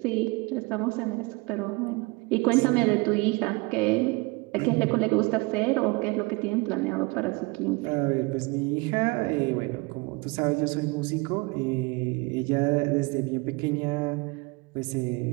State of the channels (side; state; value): left; quieter; 26.1 dB